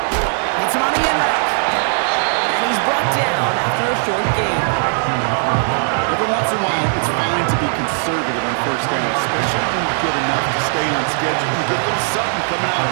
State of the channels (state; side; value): silent; left; 59 dB below the other